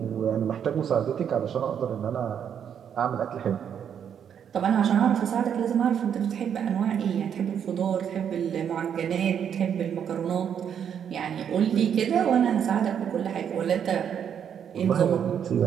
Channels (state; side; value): quieter; left; 8.4 dB